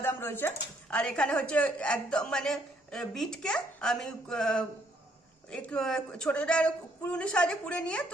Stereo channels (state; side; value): normal; both; correlation 0.68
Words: রয়েছে। আর এখানে হচ্ছে একদম বিটকে আমি একটু ছোট ছোট কুড়ুনি সাহায্যে কুড়ে নিয়ে